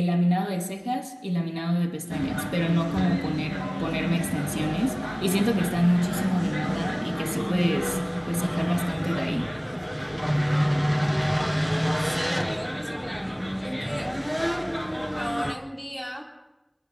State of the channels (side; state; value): both; identical; correlation 1.00